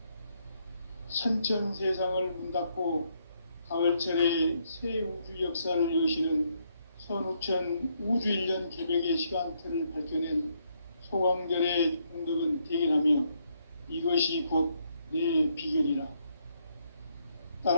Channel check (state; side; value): inverted; both; correlation -0.74